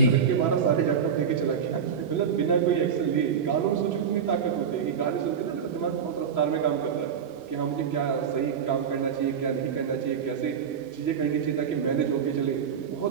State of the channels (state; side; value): quieter; left; 7.2 dB